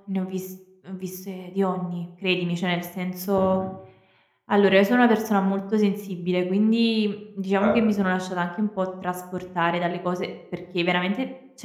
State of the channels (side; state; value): both; identical; correlation 1.00